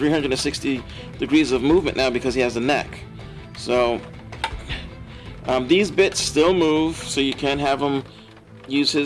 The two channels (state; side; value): identical; both; correlation 1.00